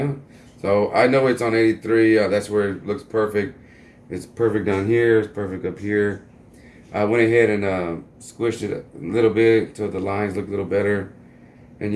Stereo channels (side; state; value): both; identical; correlation 1.00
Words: So I know it's on 83. That's where it looks perfect. It's perfect down here. It's perfect up here. I went ahead and squished it a little bit so the lines look a little better. And